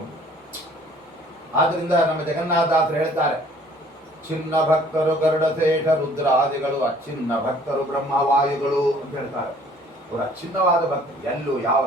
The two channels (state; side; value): normal; both; correlation 0.56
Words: ಆದ್ರಿಂದ ನಮ್ಮ ಜಗನ್ನಾಥದಾಸರು ಹೇಳ್ತಾರೆ, ಚಿನ್ನ ಭಕ್ತರು ಗರುಡಶೇಷ ರುದ್ರಾದಿಗಳು, ಅಚ್ಚಿನ್ನ ಭಕ್ತರು ಬ್ರಹ್ಮವಾಯುಗಳು ಅಂತ ಹೇಳ್ತಾರೆ. ಅವರು ಅಚ್ಛಿನ್ನವಾದ ಭಕ್ತರು, ಎಲ್ಲೂ ಯಾವ